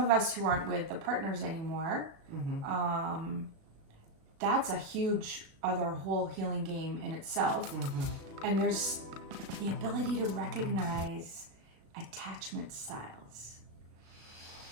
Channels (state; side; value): late; left; 36 ms